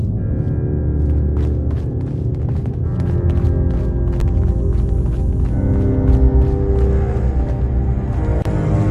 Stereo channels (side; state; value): both; identical; correlation 1.00